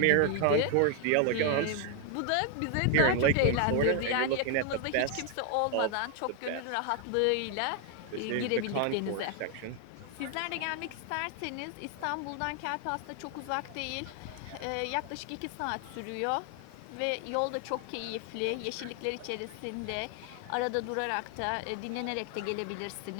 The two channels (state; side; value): different; both; correlation 0.01